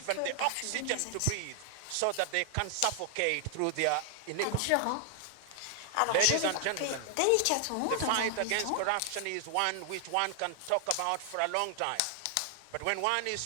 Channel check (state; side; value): different; both; correlation 0.00